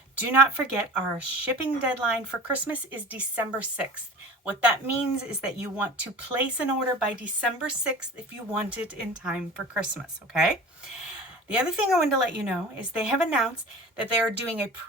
do not forget our shipping deadline for Christmas is December 6th. What that means is that you want to place an order by December 6th if you want it in time for Christmas, okay? The other thing I wanted to let you know is they have announced that they are doing a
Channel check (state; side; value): normal; both; correlation 0.38